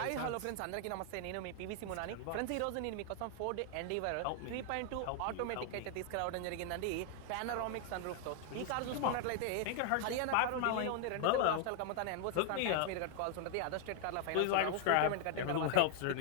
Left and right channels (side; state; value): both; different; correlation 0.00